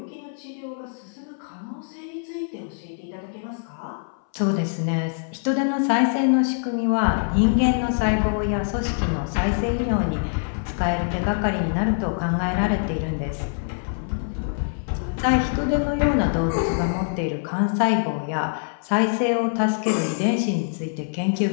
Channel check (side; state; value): right; silent; 63 dB below the other